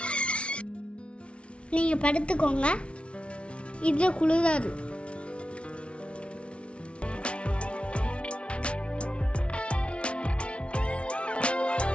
நீங்க படுத்துக்கோங்க, இதுல குளிராது.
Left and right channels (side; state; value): right; late; 0.060 ms